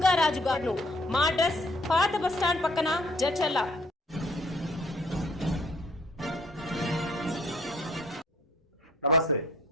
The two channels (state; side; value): normal; both; correlation 0.59